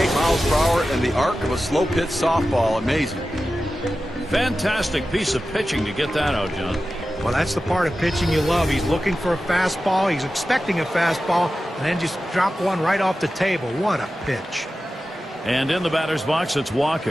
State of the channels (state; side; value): normal; both; correlation 0.93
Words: miles per hour and the arc of a slow pitch softball. Amazing. Fantastic piece of pitching to get that out, John. Well, that's the part of pitching you love. He's looking for a fastball. He's expecting a fastball, and then just drop one right off the table. What a pitch. And in the batter's box, it's